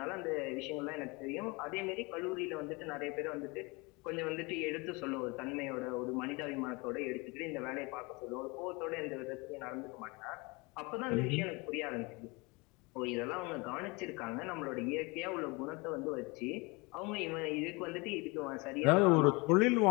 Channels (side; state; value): right; quieter; 26.8 dB